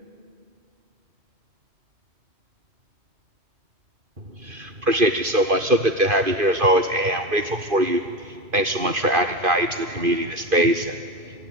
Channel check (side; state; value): left; late; 2.5 ms